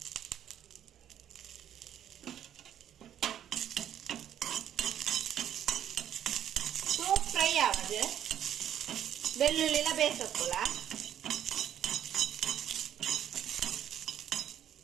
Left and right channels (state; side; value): quieter; left; 10.3 dB